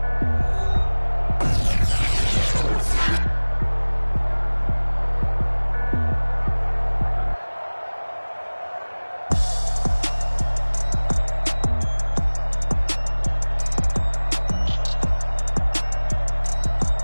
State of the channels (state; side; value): inverted; both; correlation -1.00